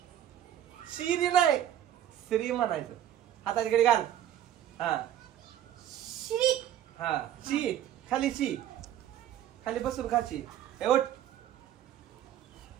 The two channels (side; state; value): left; quieter; 11.2 dB